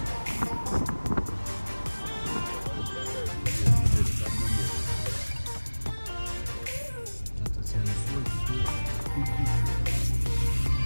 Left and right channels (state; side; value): inverted; both; correlation -1.00